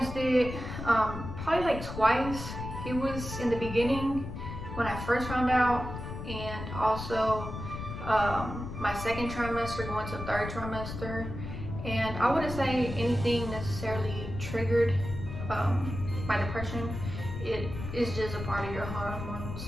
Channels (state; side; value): noise; left; rumble, 8 dB below the sound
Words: it probably like twice. It was in the beginning when I first found out, and also my 2nd trimester going to 3rd trimester. And I wouldn't say anything necessarily triggered my depression. It is just a part of your hormones,